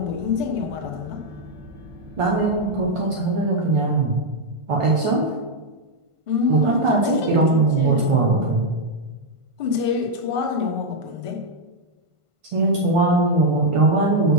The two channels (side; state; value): left; late; 1.5 ms